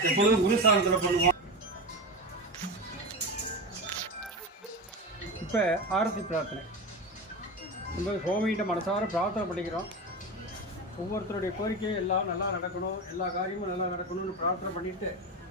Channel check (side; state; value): both; normal; correlation 0.22